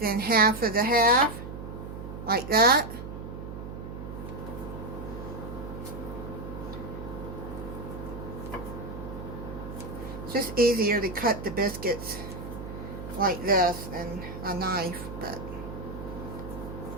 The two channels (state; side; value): noise; right; hum, 9 dB below the sound